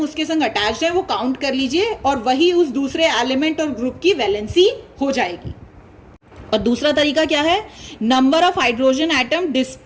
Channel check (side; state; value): both; identical; correlation 1.00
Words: संग अटैच्ड है वो काउंट कर लीजिए और वही उस दूसरे एलिमेंट और ग्रुप की वैलेंसी हो जाएगी। और दूसरा तरीका क्या है, number of hydrogen atom